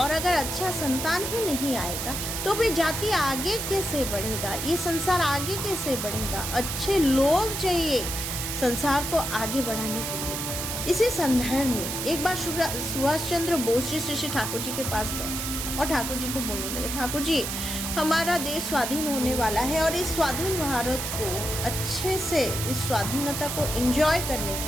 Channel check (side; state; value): right; noise; hiss, 4 dB below the sound